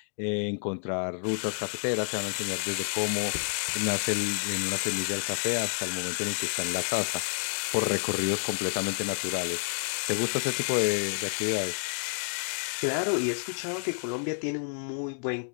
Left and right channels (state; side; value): silent; right; digital silence